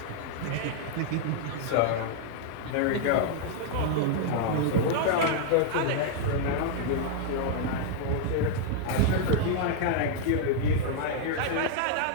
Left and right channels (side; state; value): both; different; correlation 0.00